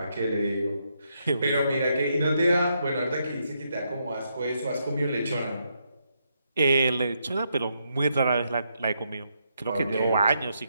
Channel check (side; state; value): both; inverted; correlation -0.79